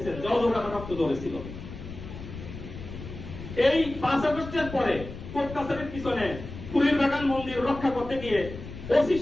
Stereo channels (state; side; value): noise; left; rumble, 11 dB below the sound